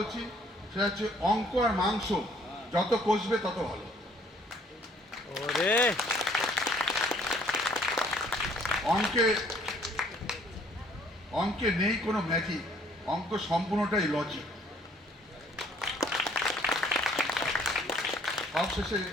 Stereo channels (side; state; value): both; normal; correlation 0.61